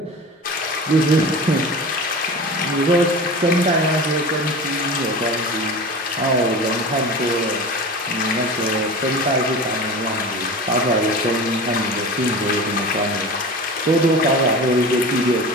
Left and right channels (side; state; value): both; normal; correlation 0.32